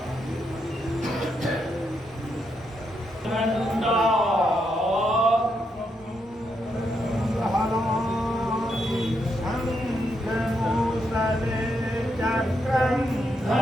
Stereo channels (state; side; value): normal; both; correlation 0.80